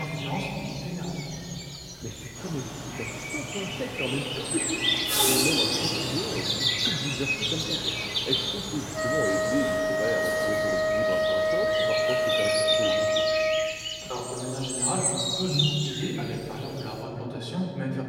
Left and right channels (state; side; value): identical; both; correlation 1.00